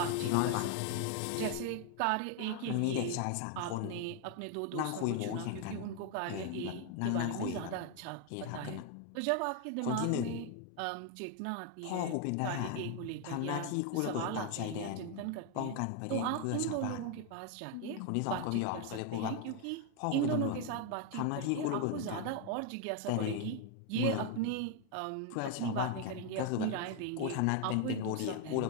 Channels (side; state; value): both; different; correlation 0.01